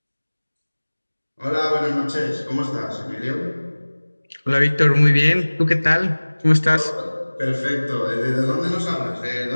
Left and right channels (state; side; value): inverted; both; correlation -1.00